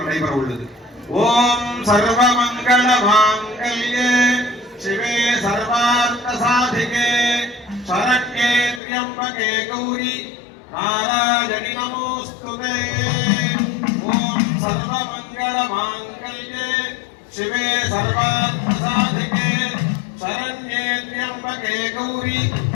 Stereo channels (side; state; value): right; drops out; at 8.8 s